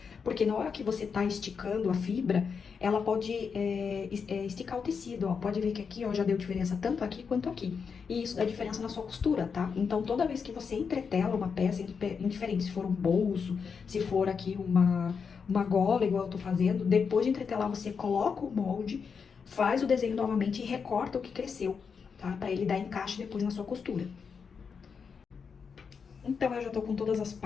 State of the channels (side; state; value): right; quieter; 6.0 dB